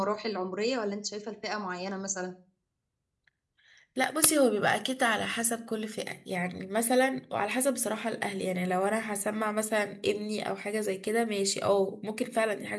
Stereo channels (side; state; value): both; identical; correlation 1.00